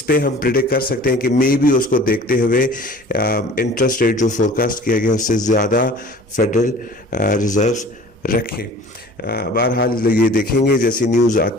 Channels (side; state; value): both; normal; correlation 0.45